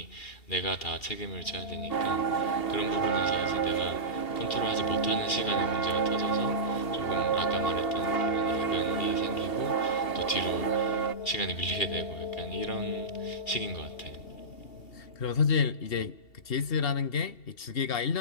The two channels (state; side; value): late; right; 2.7 ms